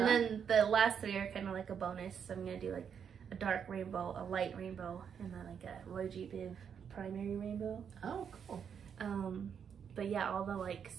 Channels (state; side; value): quieter; left; 7.5 dB